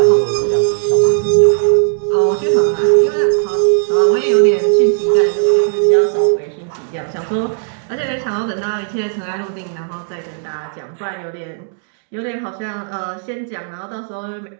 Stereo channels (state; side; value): silent; left; digital silence